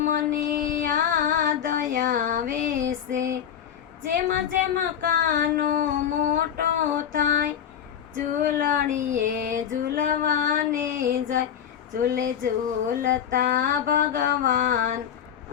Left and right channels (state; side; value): quieter; right; 9.1 dB